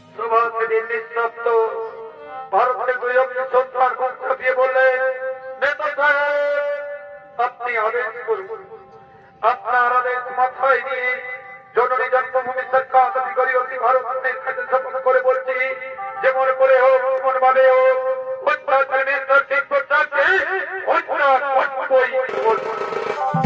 সুভাষে দিল্লির শব্দ ভারতের 2 অক্ষর সন্তান মুখ ছাপিয়ে বললেন, নেতা সাহেব আপনি আদেশ করুন। আপনার আদেশ মাথায় নিয়ে জননী জন্মভূমি সরকার অধিকারী অতি ভারতের কাছে শপথ করে বলছি, যেমন করে হোক, যেমন ভাবে হোক, অত্যাচার মিনিস্টার শিক্ষককে হত্যা করবই করবো।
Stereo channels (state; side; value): identical; both; correlation 1.00